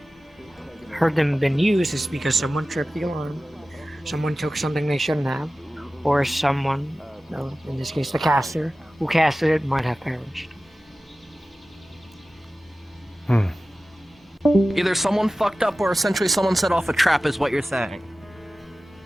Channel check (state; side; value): normal; both; correlation 0.96